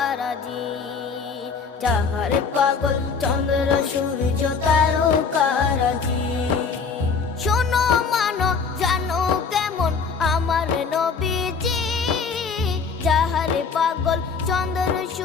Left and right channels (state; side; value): quieter; right; 5.3 dB